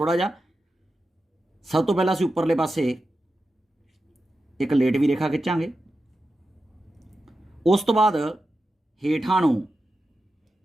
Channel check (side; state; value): both; normal; correlation 0.91